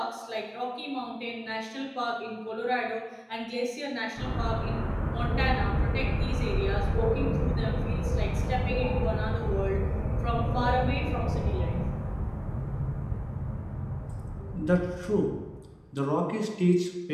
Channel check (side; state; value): both; identical; correlation 1.00